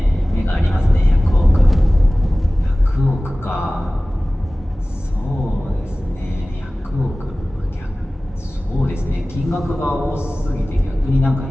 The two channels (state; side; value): normal; both; correlation 0.97